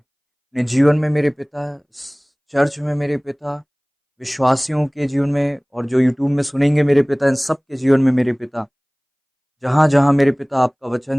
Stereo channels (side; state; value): both; identical; correlation 1.00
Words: जीवन में मेरे पिता, चर्च में मेरे पिता, विश्वासियों के जीवन में और जो यूट्यूब में सुनेंगे मेरे पिता, इन सब के जीवन में मेरे पिता, जहाँ-जहाँ मेरे पिता आपका